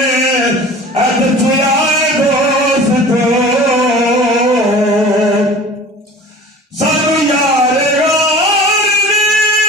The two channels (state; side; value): normal; both; correlation 0.42